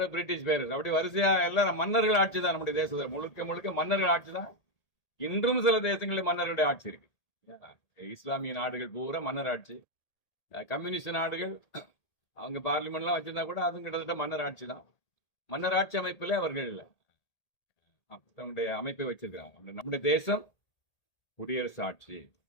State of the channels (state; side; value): late; right; 1.8 ms